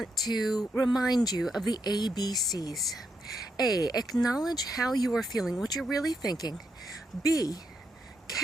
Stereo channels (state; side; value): normal; both; correlation 0.81